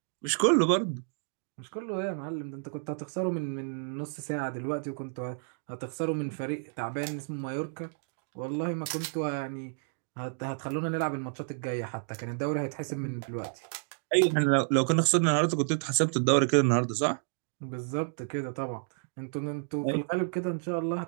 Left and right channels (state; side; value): silent; left; digital silence